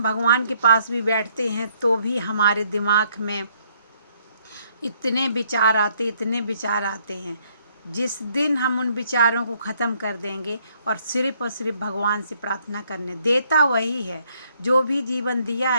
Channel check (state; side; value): inverted; both; correlation -0.68